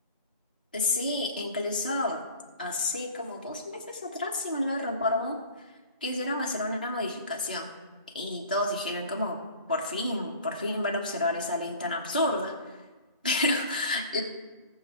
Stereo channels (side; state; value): both; inverted; correlation -0.42